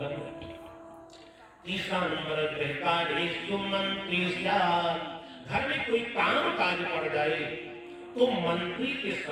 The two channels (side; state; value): both; identical; correlation 1.00